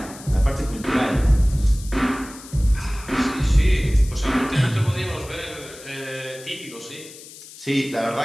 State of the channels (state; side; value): noise; left; hiss, 17 dB below the sound